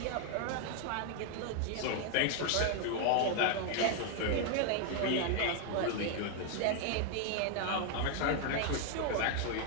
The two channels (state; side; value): different; both; correlation 0.00